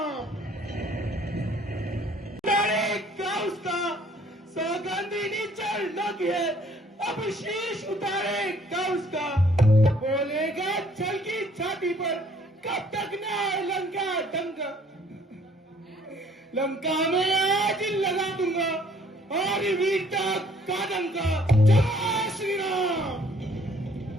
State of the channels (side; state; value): both; normal; correlation 0.59